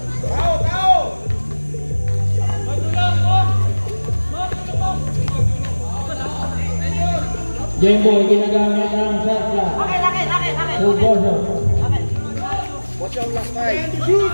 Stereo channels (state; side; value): inverted; both; correlation -1.00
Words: Jemboy, ginagamit ang shot clock. Poso. Watch out last fight.